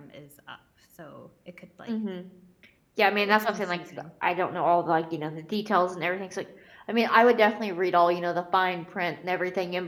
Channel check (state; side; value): identical; both; correlation 1.00